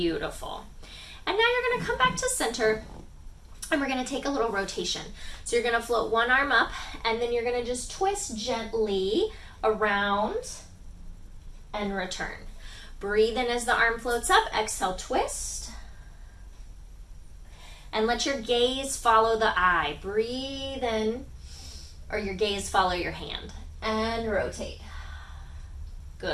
And now you're going to come back to center, and we're going to take a little rotation. So you're going to float one arm up, and then you're going to just twist gently around and return. Breathe in as the arm floats up. Exhale, twist. And let your gaze follow the eye. Breathe in, or your gaze follow your hand. And rotate.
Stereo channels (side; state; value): both; identical; correlation 1.00